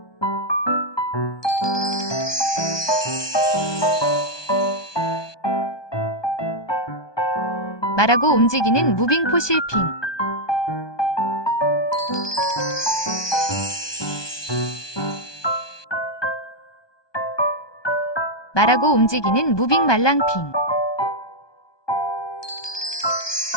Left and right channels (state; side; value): late; right; 1.2 ms